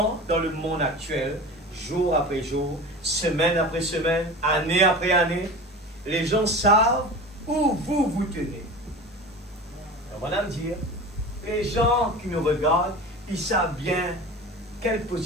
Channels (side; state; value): both; normal; correlation 0.33